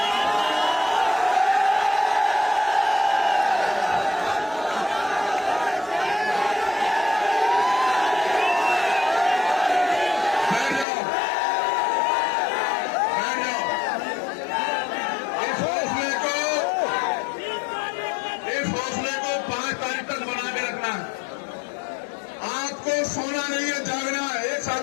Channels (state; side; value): drops out; right; at 10.9 s